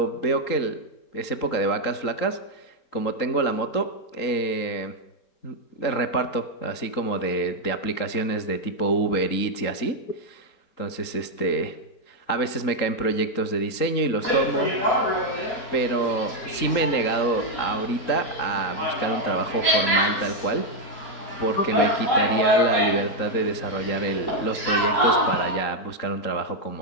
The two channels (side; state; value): right; late; 3.9 ms